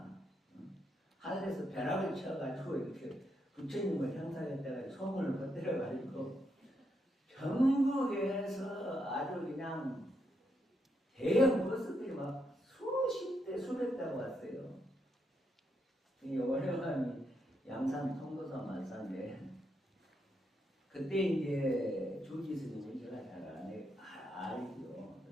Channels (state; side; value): normal; both; correlation 0.80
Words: 하늘에서 벼락을 쳐가지고 이렇게 부처님을 형상했다가 소문을 퍼뜨려가지고 전국에서 아주 그냥 대형 버스들이 막 수십 대 수백 대가 왔어요. 이 원효함이 양산 통도사 말사인데 그때 이제 주지 스님이 제가 잘 알죠.